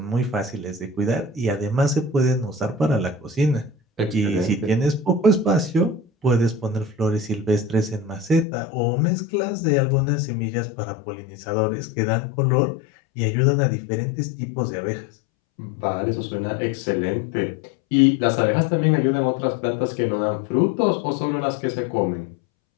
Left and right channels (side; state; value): right; drops out; at 8.5 s